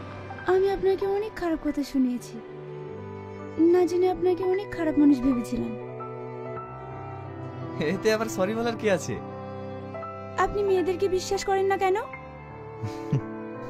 আমি আপনাকে অনেক খারাপ কথা শুনিয়েছি, না জেনে আপনাকে অনেক খারাপ মানুষ ভেবেছিলাম। এতে আবার সরি বলার কি আছে? আপনি মেয়েদেরকে বিশ্বাস করেন না কেন?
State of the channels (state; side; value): identical; both; correlation 1.00